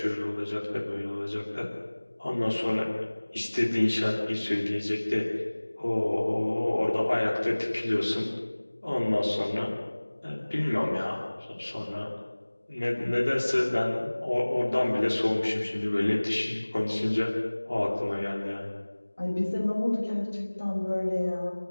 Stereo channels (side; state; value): both; inverted; correlation -1.00